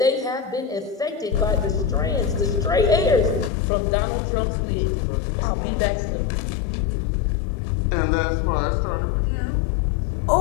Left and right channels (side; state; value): right; drops out; at 3.5 s